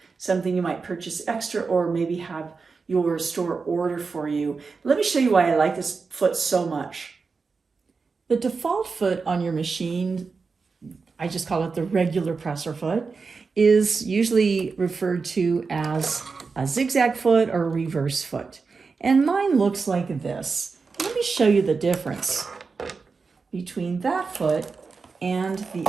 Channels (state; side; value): quieter; left; 4.7 dB